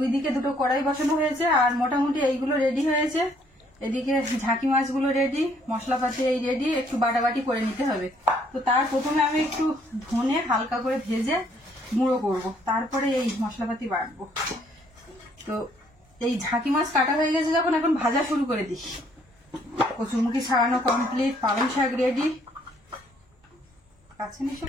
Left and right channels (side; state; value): both; normal; correlation 0.65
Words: দিকে দুটো কড়াই বসানো হয়েছে, আর মোটামুটি এইগুলো রেডি হয়েছে। এদিকে ঝাঁকি মাছগুলো রেডি, মশলাপাতি এই রেডি, একটু বাটাবাটি করে নিতে হবে। তো তার প্রথমে আমি একটু ধনে হালকা করে ভেজে গুঁড়ো করব, তারপরে এই মশলাপাতি বাটবো। তো এই ঝাঁকি মাছ কাটা হয়ে গেছে যখন, এখন ভাজা শুরু করে দিই। কচুরমুখী ছাড়ানো কমপ্লিট, পালং শাক রেডি। কাছে নিয়ে